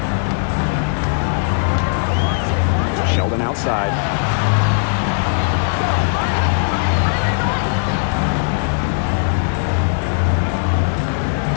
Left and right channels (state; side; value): silent; right; 63 dB below the other